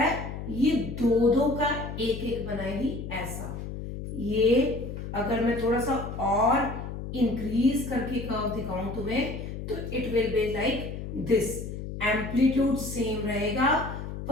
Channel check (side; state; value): left; noise; hum, 7 dB below the sound